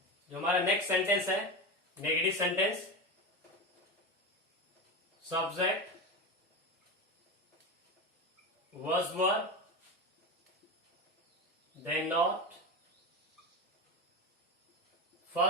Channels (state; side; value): normal; both; correlation 0.21